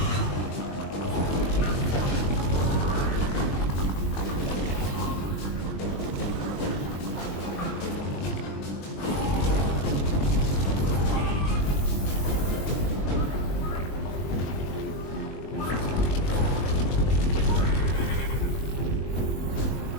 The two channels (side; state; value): right; late; 21 ms